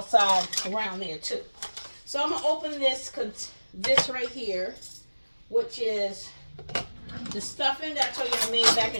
around there too. So I'm gonna open this right here, which is the stuffing that I told you I made back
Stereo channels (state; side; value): inverted; both; correlation -1.00